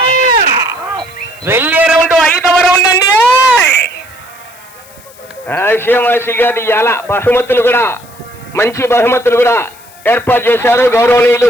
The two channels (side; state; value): left; noise; hiss, 24 dB below the sound